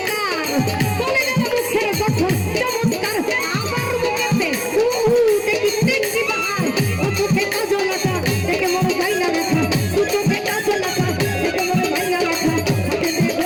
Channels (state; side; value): identical; both; correlation 1.00